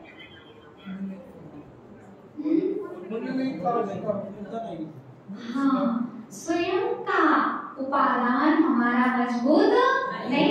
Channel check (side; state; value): both; identical; correlation 1.00